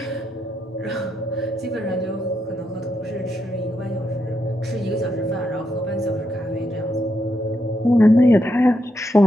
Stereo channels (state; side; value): normal; both; correlation 0.81